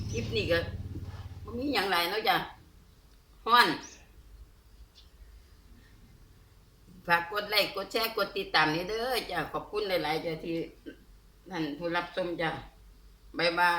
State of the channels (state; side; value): identical; both; correlation 1.00